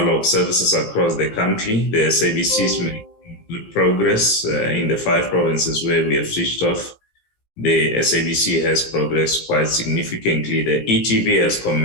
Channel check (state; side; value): late; right; 17 ms